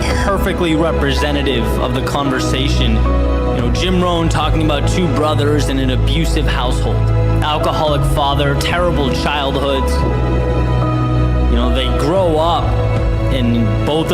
perfectly representative of the conversation. You know, Jim Rohn talking about two brothers in an abusive household. Alcoholic father, terrible childhoods. You know, they grow up and both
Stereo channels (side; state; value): both; identical; correlation 1.00